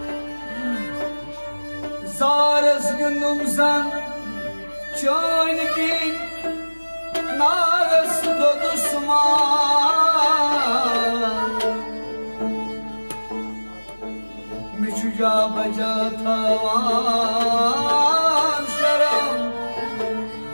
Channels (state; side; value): inverted; both; correlation -1.00